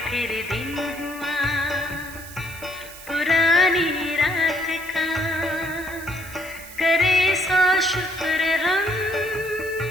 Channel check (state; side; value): noise; right; hiss, 16 dB below the sound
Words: फिर दिन हुआ पुरानी रात का, करे सौ शुक्र हम